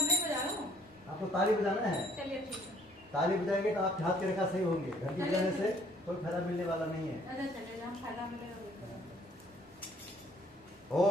नहीं बजा रहा हूँ। आपको ताली बजाना है। चलिए ठीक है। ताली बजाएंगे तो आप हाथ के रेखा सही होंगे। घंटी बजाने से कोई फायदा मिलने वाला नहीं है। अच्छा चलिए, हम फायदा मिलेगा।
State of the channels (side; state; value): both; normal; correlation 0.61